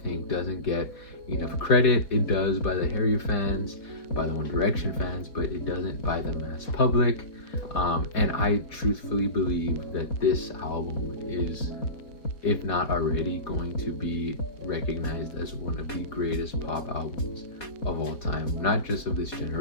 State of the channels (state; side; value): late; right; 4.2 ms